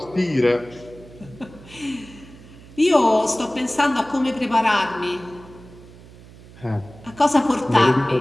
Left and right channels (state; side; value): noise; right; hum, 21 dB below the sound